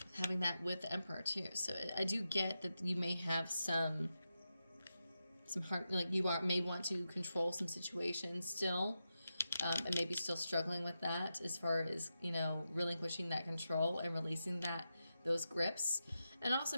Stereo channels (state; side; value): inverted; both; correlation -0.89